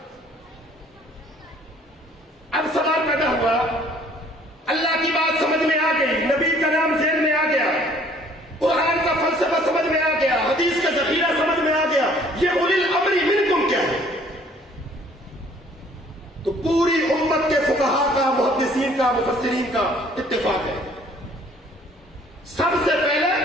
اب سوال پیدا ہوا, اللہ کی بات سمجھ میں آ گئی, نبی کا نام ذہن میں آ گیا, قرآن کا فلسفہ سمجھ میں آ گیا, حدیث کا ذخیرہ سمجھ میں آ گیا, یہ اولی الامر منکم کیا ہے؟ تو پوری امت کے فقہا کا, محدثین کا, مفسرین کا اتفاق ہے. سب سے پہلے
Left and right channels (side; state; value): both; normal; correlation 0.58